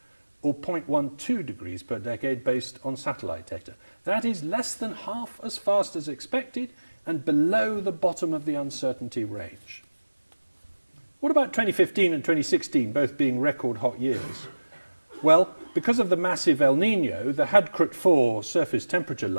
or 0.12 degrees per decade based on satellite data. That is less than half as fast as expected and below the bottom of the uncertainty range. What about 2015 and 2016, both being record hot years? Well, because of the massive El Niño, the Hadkrut 4 surface temperature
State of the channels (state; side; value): inverted; both; correlation -1.00